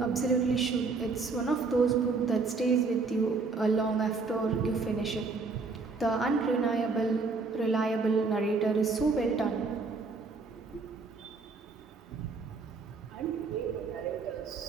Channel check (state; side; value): quieter; left; 4.2 dB